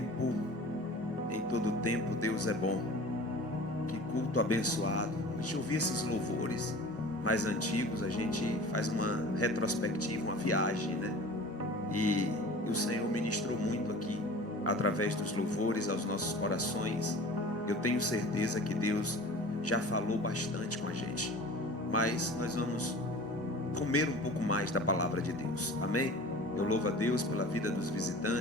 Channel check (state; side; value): normal; both; correlation 0.40